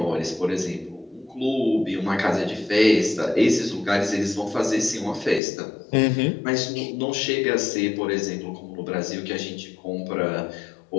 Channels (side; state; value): right; drops out; at 5.4 s